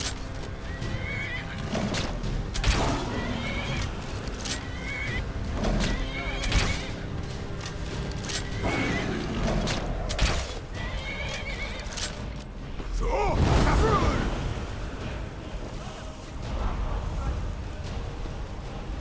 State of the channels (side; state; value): both; identical; correlation 1.00